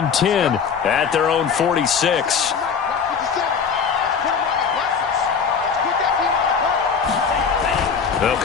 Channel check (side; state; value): right; quieter; 6.2 dB